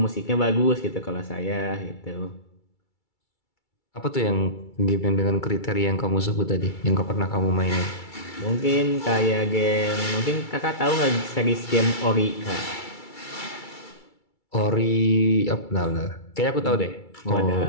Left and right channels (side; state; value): right; late; 2.3 ms